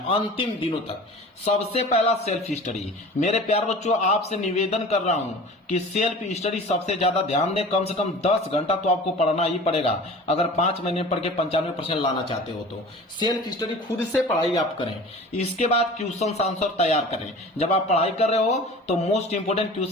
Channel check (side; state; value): both; normal; correlation 0.40